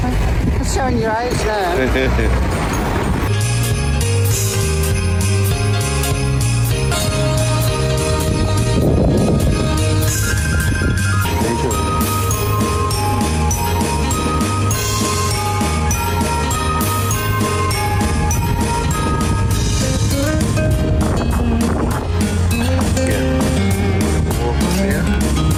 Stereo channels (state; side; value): identical; both; correlation 1.00